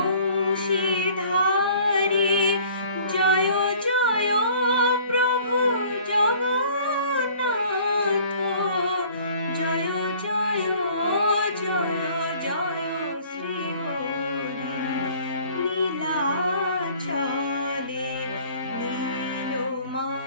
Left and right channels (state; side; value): inverted; both; correlation -0.52